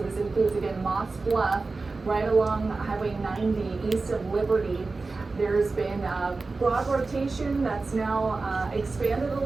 this includes again Moss Bluff, right along Highway 90 east of Liberty. There's been broad rotation that's now expanded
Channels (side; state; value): left; quieter; 3.8 dB